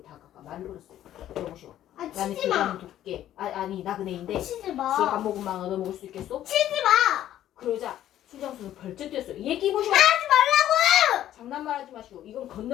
다가가 말을 걸었어요. 여보시오. 나는 치지 마. 도깨. 아니 나그네인데 치지 술 마. 한 모금만 얻어먹을 수 있겠소? 치지 마. 그러자 술장수는 벌쩍 뛰었어요. 얘기 보시오. 하지 말라고. 장난말 하지 마시오. 이건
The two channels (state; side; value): quieter; right; 12.2 dB